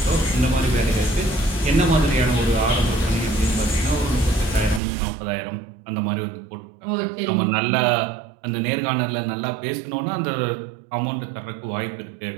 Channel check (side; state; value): left; drops out; at 4.8 s